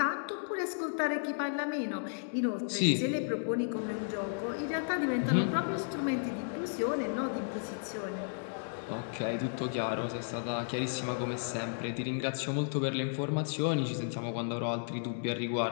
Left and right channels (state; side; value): silent; right; digital silence